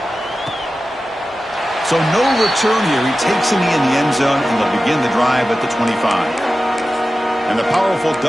So no return here. He takes him in the end zone, and they'll begin the drive at the 25. And the powerful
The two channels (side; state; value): both; normal; correlation 0.94